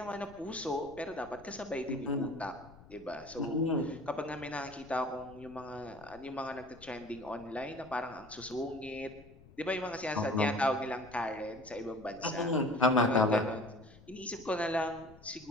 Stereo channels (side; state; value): left; noise; rumble, 22 dB below the sound